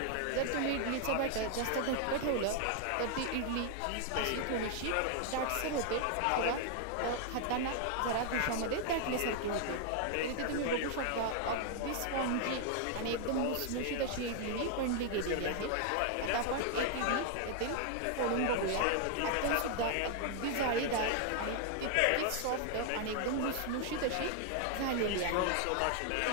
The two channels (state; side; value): different; both; correlation 0.00